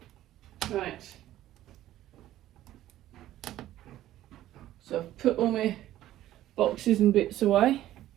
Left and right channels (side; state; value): left; quieter; 13.7 dB